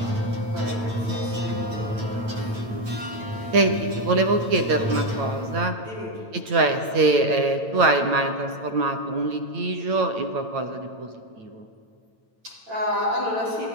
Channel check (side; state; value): left; late; 9.0 ms